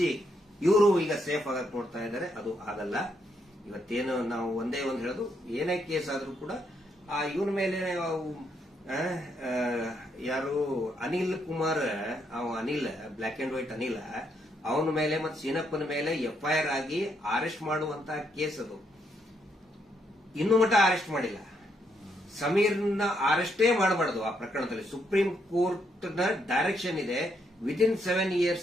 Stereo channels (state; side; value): normal; both; correlation 0.76